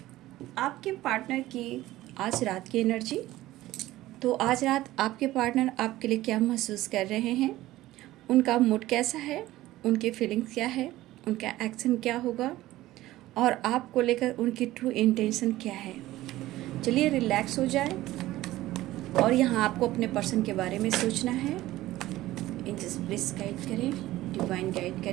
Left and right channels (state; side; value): quieter; left; 16.2 dB